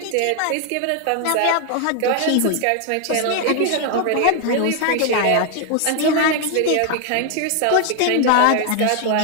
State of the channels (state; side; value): different; both; correlation 0.01